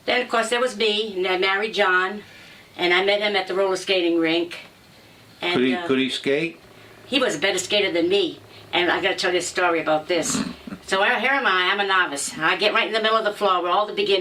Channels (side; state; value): both; identical; correlation 1.00